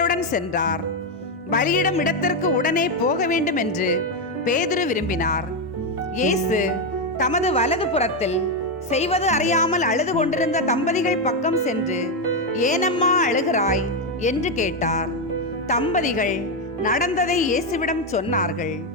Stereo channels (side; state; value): both; normal; correlation 0.06